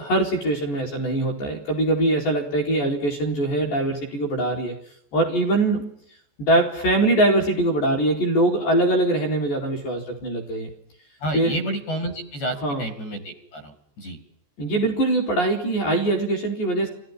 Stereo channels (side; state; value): right; late; 14 ms